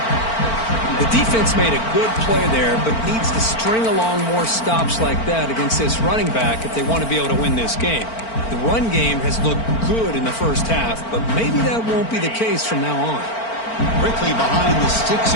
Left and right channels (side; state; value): right; late; 4.4 ms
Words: The defense made a good play there, but needs to string along more stops like that against this running back if they want to be able to win this game. The run game has looked good in the first half, but maybe that won't be the case from now on. Quickly behind the sticks